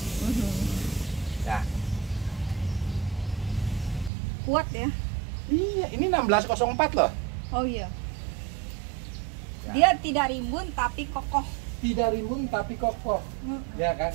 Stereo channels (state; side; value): drops out; left; at 4.1 s